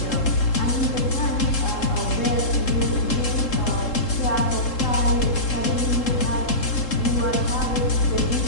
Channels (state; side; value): late; right; 3.7 ms